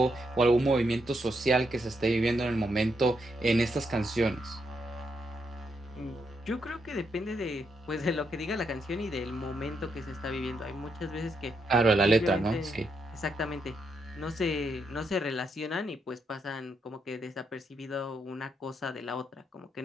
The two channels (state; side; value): normal; both; correlation 0.79